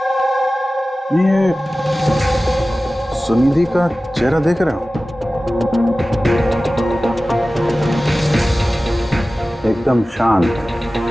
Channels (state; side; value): normal; both; correlation 0.96